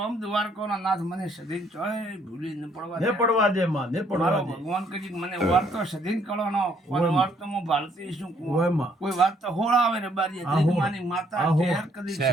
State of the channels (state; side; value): normal; both; correlation 0.67